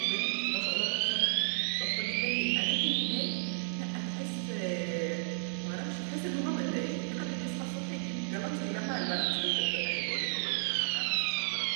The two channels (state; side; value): silent; left; digital silence